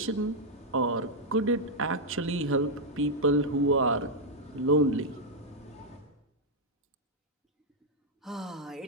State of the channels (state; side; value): normal; both; correlation -0.03